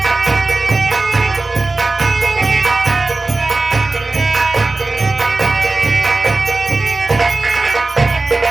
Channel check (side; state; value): left; quieter; 3.3 dB